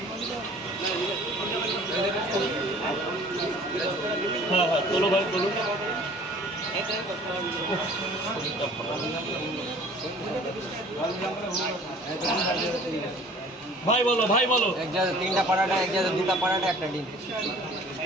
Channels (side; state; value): both; normal; correlation 0.50